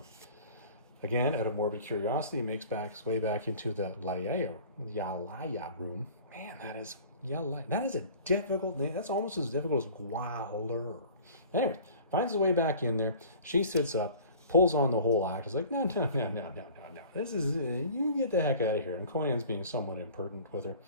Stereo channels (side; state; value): both; inverted; correlation -0.45